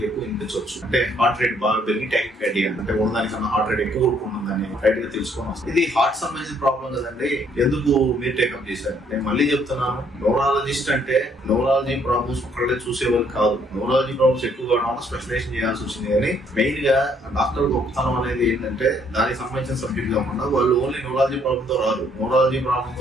ఎక్కువ వినిపించవచ్చు. అంటే హార్ట్ రేట్ బాగా పెరిగి టాకికార్డియా, అంటే ఉన్నదానికన్నా హార్ట్ రేట్ ఎక్కువ ఉంటుందని రైట్ గా తెలుసుకొని వస్తుంది. ఇది హార్ట్ సంబంధించిన ప్రాబ్లం కదండి, ఎందుకు మీరు టేకప్ చేశారు? నేను మళ్ళీ చెప్తున్నాను, న్యూరాలజిస్ట్ అంటే న్యూరాలజీ ప్రాబ్లమ్స్ ఒక్కళ్ళే చూసేవాళ్ళు కాదు. న్యూరాలజీ ప్రాబ్లమ్స్ ఎక్కువగా స్పెషలైజేషన్ చేయాల్సి వచ్చింది. కానీ మెయిన్ గా డాక్టర్ గొప్పతనం అనేది ఏంటంటే, దానికి సంబంధించిన సబ్జెక్ట్ కాకుండా వాళ్ళు ఓన్లీ న్యూరాలజీ ప్రాబ్లమ్ తో రాదు. న్యూరాలజీ ప్రాబ్లమ్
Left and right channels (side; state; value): both; normal; correlation 0.66